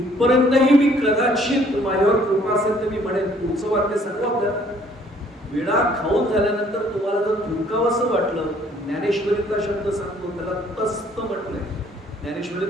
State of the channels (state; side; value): normal; both; correlation 0.61